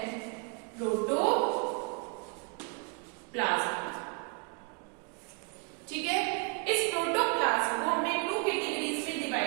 प्रोटोप्लाज्म। ठीक है, इस प्रोटोप्लाज्म को हमने 2 कैटेगरीज में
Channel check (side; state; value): left; quieter; 34.7 dB